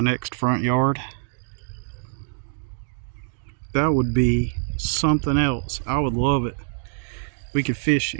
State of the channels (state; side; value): silent; left; digital silence